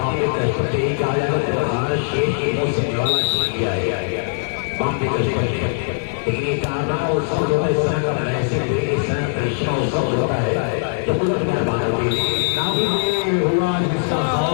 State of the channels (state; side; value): silent; right; digital silence